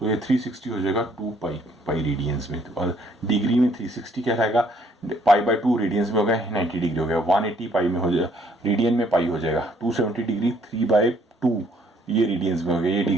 ये 360 हो जाएगा 2 पाई रेडियंस में, और डिग्री में 360 क्या रहेगा, पाई बाय 2 रेडियंस में हो गया 90 डिग्री हो गया, 180 पाई में हो जाएगा, रेडियन में पाई हो जाएगा, 270 डिग्री 3 बाय 2 ये रेडियंस में हो गया, ये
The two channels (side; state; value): both; normal; correlation 0.64